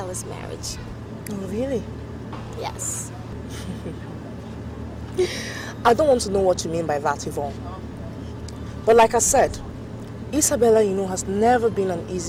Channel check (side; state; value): both; identical; correlation 1.00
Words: marriage. Oh, really? Yes. I don't want to know what you mean by that, Yvonne. But like I said, Isabella, you know, has never been an